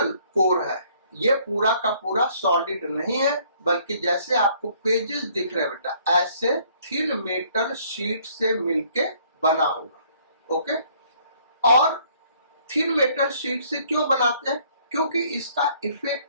कोर है ये पूरा का पूरा सॉलिड नहीं है, बल्कि जैसे आपको पेजेस दिख रहे हैं बेटा, ऐसे थिन मेटल शीट से मिलके बना होगा। ओके, और थिन मेटल शीट से क्यों बनाते हैं? क्योंकि इसका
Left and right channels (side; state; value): both; inverted; correlation -0.61